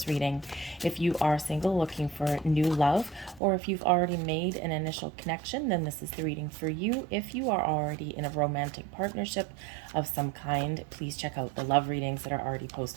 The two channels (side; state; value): left; drops out; at 3.4 s